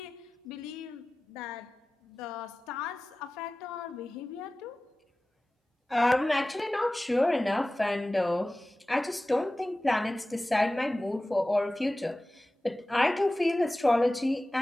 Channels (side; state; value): both; normal; correlation 0.97